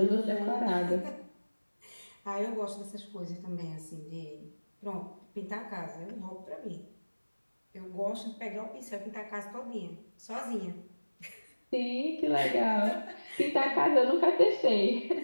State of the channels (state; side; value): inverted; both; correlation -1.00